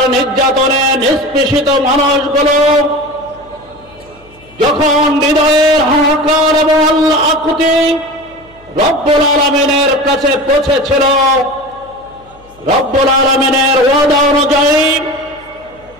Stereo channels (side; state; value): left; noise; hum, 27 dB below the sound